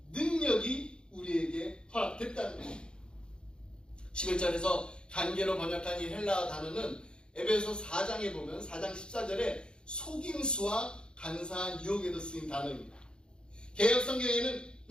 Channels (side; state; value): right; late; 0.051 ms